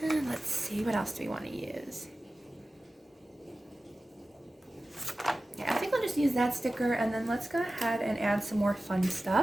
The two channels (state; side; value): normal; both; correlation 0.96